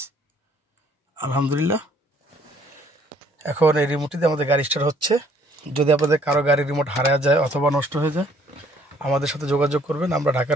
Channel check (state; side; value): normal; both; correlation 0.62